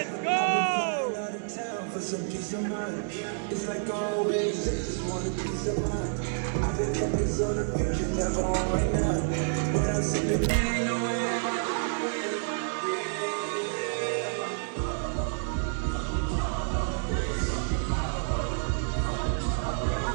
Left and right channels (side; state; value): left; silent; digital silence